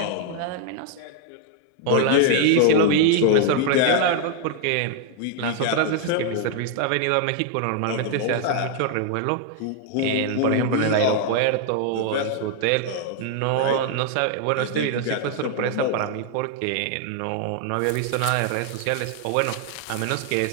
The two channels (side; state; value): both; different; correlation 0.00